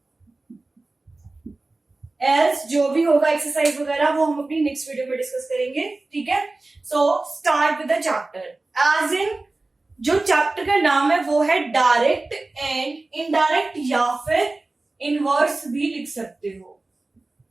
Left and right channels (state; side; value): quieter; left; 3.2 dB